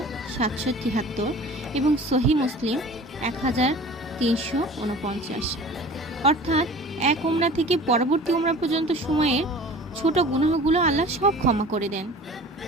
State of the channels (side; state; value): both; normal; correlation 0.42